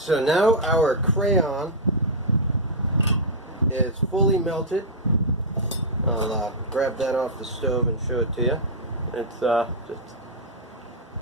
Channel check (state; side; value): normal; both; correlation -0.07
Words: now our crayon is fully melted. I'll grab that off the stove and show it to you. It's just